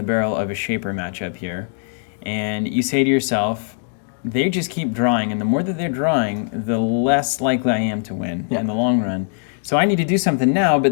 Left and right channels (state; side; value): silent; right; digital silence